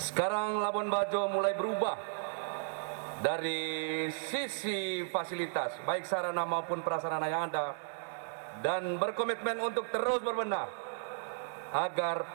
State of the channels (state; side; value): silent; left; digital silence